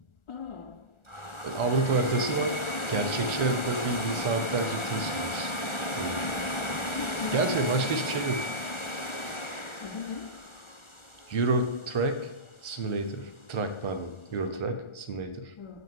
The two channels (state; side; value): late; right; 1.4 ms